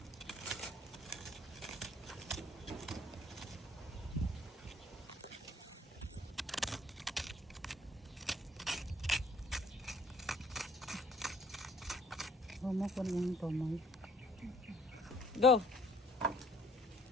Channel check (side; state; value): both; normal; correlation 0.59